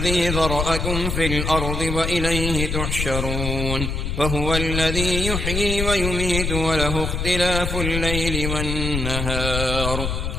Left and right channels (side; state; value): left; noise; rumble, 2 dB below the sound